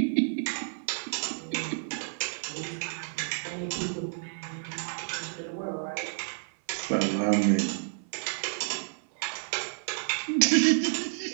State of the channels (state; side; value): silent; left; 58 dB below the other